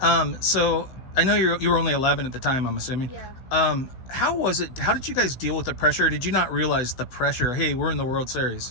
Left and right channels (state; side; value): late; right; 15 ms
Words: So I know you were only 11 at the time, I'm assuming. Yeah. How was it? How did you guys deal with the pressure? Did you not realize the pressure? Hey, we're in the World